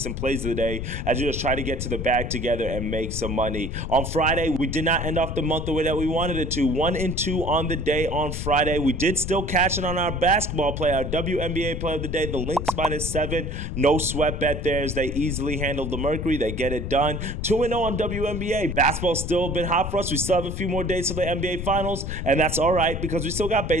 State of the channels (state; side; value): noise; left; rumble, 5 dB below the sound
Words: and plays of the day as we just try to get to the bag together and make some money. On Friday, we did not end off the month the way that we wanted it to. 1-2 on the day on Friday. We did still cash in on our basketball play, our WNBA play of the day, the Lynx -7. No sweat bet there as they easily handled the Mercury. They get it done. 2-0 on WNBA. Basketball's still been hot for us. We still have a few more days to the NBA Finals, and that's all right because we still got